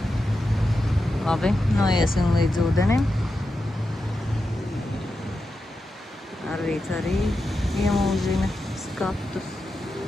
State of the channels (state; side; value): normal; both; correlation 0.89